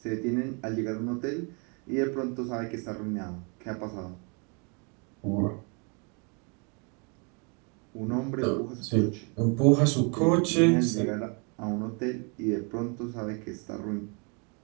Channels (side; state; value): left; quieter; 34.7 dB